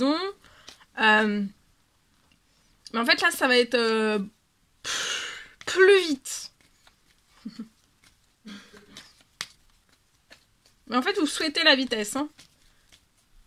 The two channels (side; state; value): both; identical; correlation 1.00